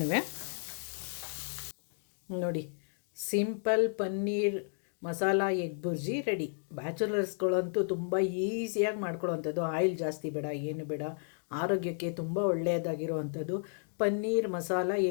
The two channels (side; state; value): right; silent; digital silence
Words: ನೋಡಿ, simple paneer masala egg bhurji ready. ಬ್ಯಾಚುಲರ್ಸ್ಗಳಂತೂ ತುಂಬ ಈಸಿಯಾಗಿ ಮಾಡ್ಕೊಳ್ಳೋವಂಥದ್ದು. ಆಯಿಲ್ ಜಾಸ್ತಿ ಬೇಡ, ಏನು ಬೇಡ. ಆರೋಗ್ಯಕ್ಕೆ ತುಂಬ ಒಳ್ಳೆಯದಾಗಿರುವಂಥದ್ದು ಪನ್ನೀರ್ ಮಸಾಲ